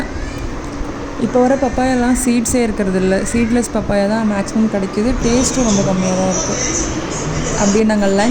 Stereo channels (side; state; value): both; identical; correlation 1.00